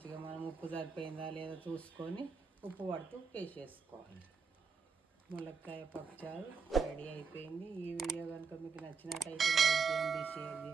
మనం ఉప్పు సరిపోయిందా లేదా చూసుకొని ఉప్పు పడుతూ వేసేసుకోవాలి. ములక్కాయ పప్పుచారు రెడీ అయిపోయింది. ఈ వీడియో కనుక మీకు నచ్చినట్టయితే లైక్ చేయండి, షేర్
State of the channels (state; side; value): quieter; left; 5.4 dB